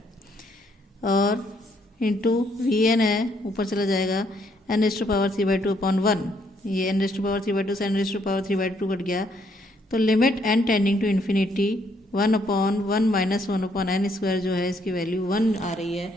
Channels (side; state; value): both; normal; correlation 0.70